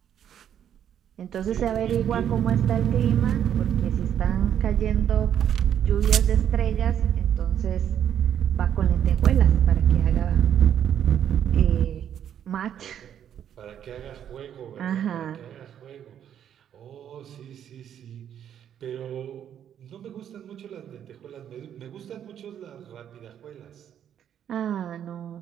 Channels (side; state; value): left; quieter; 9.6 dB